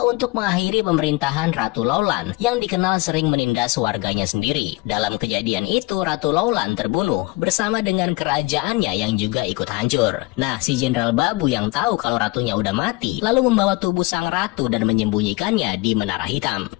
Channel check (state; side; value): quieter; right; 22.5 dB